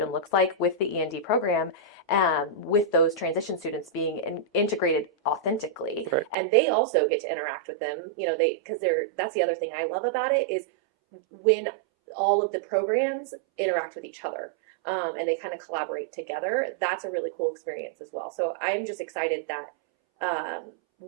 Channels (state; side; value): drops out; left; at 6.4 s